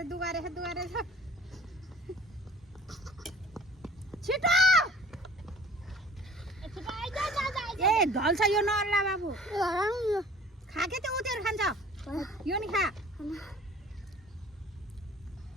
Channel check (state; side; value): normal; both; correlation 0.49